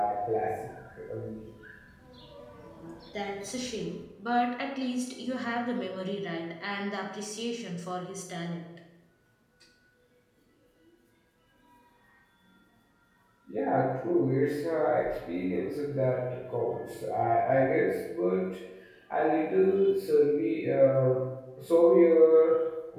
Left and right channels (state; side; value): identical; both; correlation 1.00